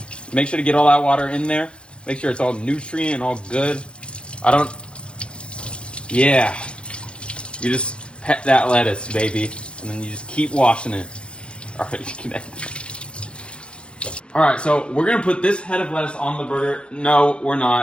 make sure to get all that water in there, make sure it's all nutrient and all good. Yeah. You just pet that lettuce, baby, and then you just keep washing it. Alright, so we're gonna put this head of lettuce on the burger. No, we're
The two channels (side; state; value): right; late; 0.057 ms